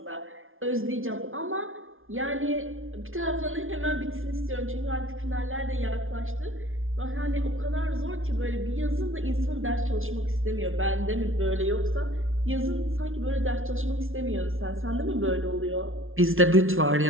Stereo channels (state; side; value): late; left; 0.59 ms